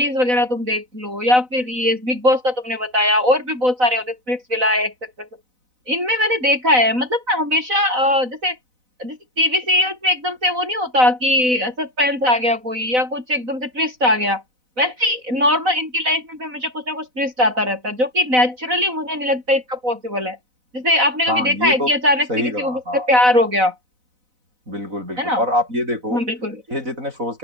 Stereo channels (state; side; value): late; left; 4.0 ms